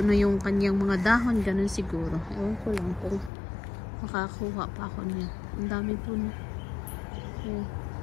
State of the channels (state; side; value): drops out; right; at 3.3 s